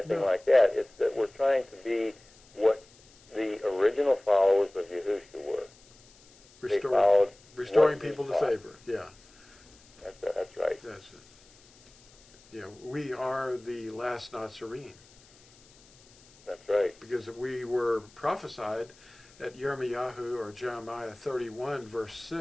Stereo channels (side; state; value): left; noise; hiss, 27 dB below the sound